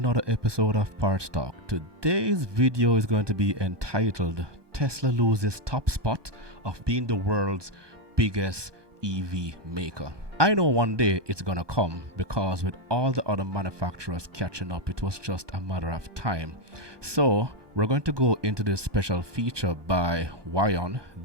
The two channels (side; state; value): left; late; 1.2 ms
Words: episode of Parts Talk. Today's video is going to be entitled Tesla loses top spot of being the world's biggest EV maker. I know one day it's gonna come because with all the other manufacturers catching up, it was just a matter of time. So we're going to go into this special feature by Wion.